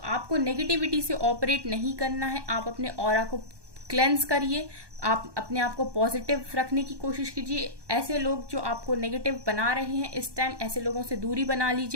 नेगेटिविटी से ऑपरेट नहीं करना है, आप अपने ऑरा को क्लेंस करिए, आप अपने आप को पॉजिटिव रखने की कोशिश कीजिए। ऐसे लोग जो आपको नेगेटिव बना रहे हैं इस टाइम, ऐसे लोगों से दूरी बना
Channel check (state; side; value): late; left; 1.2 ms